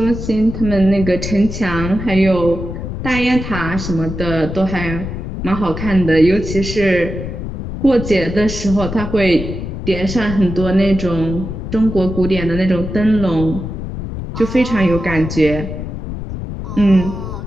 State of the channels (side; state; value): left; noise; rumble, 6 dB below the sound